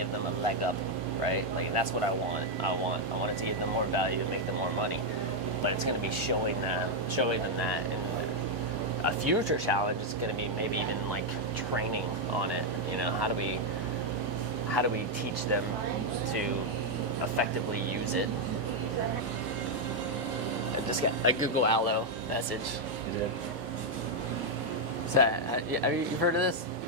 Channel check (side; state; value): both; normal; correlation 0.00